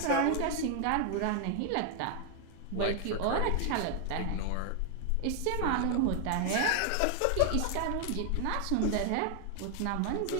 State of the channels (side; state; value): both; different; correlation 0.00